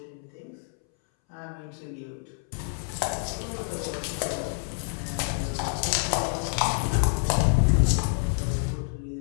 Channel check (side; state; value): right; silent; 60 dB below the other